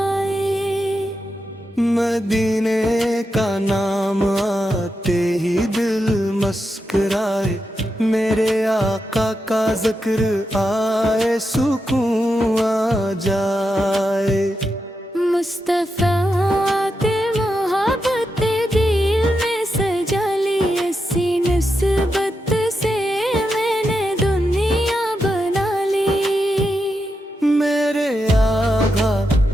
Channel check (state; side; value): normal; both; correlation 0.86